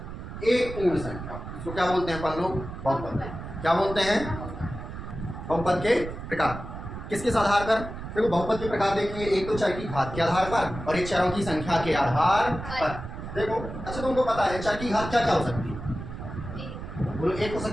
एक पूर्ण संख्या, इसको क्या बोलते हैं अपन लोग? बहुपद। क्या बोलते हैं? बहुपद के प्रकार। किसके आधार पर? देखो बहुपद के प्रकार देखेंगे, एक तो चर की घात के आधार पर और एक चरों की संख्या के आधार पर। देखो अच्छा तुमको पता है चर की घात क्या क्या हो सकती है? बोलो 1 हो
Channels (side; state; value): right; noise; rumble, 9 dB below the sound